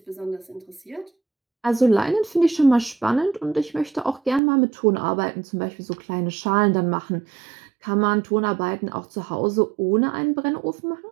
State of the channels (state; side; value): drops out; left; at 4.4 s